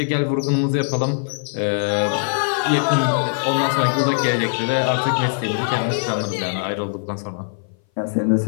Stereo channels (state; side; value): silent; right; 59 dB below the other